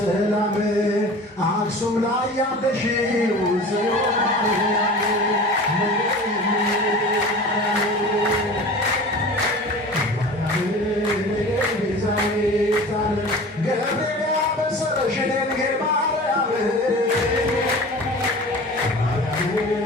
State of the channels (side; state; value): both; normal; correlation 0.38